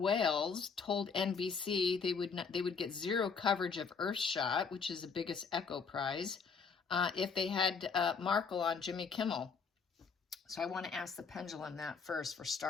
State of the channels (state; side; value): quieter; right; 5.5 dB